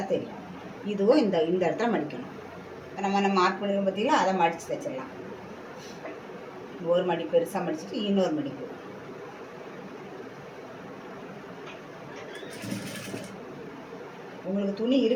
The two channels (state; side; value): identical; both; correlation 1.00